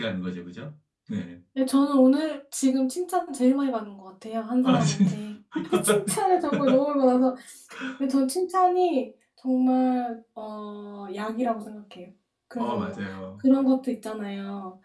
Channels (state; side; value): identical; both; correlation 1.00